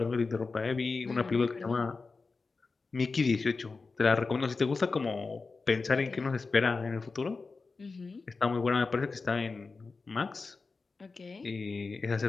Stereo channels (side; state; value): right; quieter; 4.2 dB